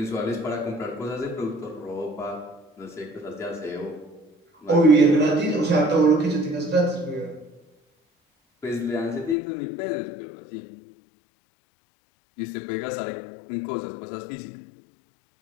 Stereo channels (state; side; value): drops out; right; at 9.3 s